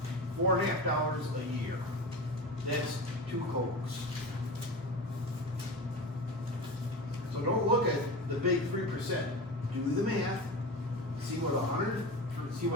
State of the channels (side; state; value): both; normal; correlation 0.28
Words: $4.50 a year. That's 2 Cokes. So don't look at the big 3%. Do the math, see what